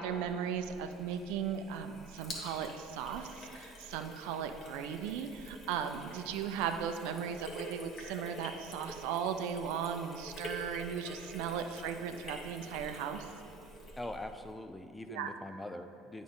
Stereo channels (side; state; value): left; quieter; 6.2 dB